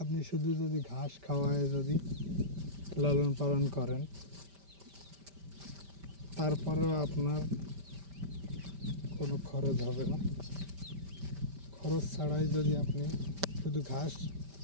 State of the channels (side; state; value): left; late; 5.1 ms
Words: আপনি শুধু যদি ঘাস খাওয়ায় যদি লালন পালন করেন, তারপরেও আপনার কোনো খরচ হবে না। খরচ ছাড়াই যদি আপনি শুধু ঘাস